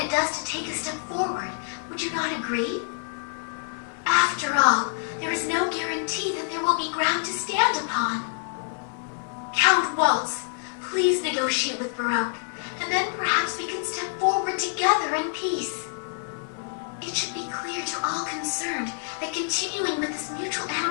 does to take a step forward. Would you not agree? After all, there is no guarantee that there will be ground to stand upon. Count Waltz, please negotiate with Baroque, and then perhaps we can step forward together in peace. It should be clear to all concerned that continuing with this mutual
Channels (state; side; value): silent; right; 60 dB below the other